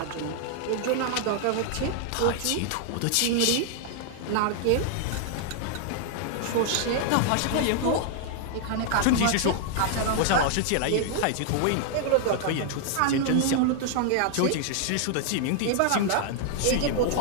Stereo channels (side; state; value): both; different; correlation 0.00